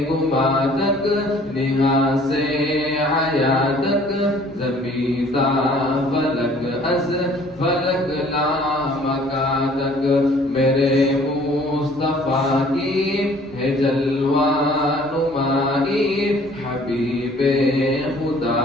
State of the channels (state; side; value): normal; both; correlation 0.55